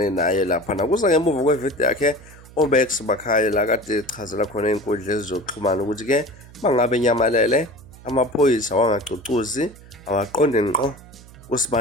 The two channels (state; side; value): noise; right; hum, 21 dB below the sound